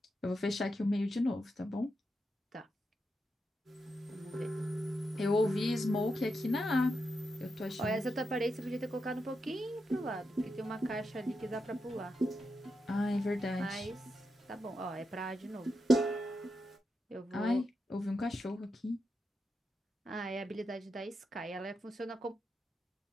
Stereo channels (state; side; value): normal; both; correlation 0.86